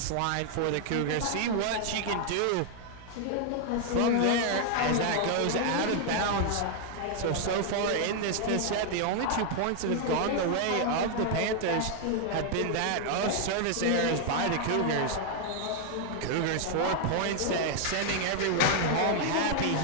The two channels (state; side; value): different; both; correlation 0.00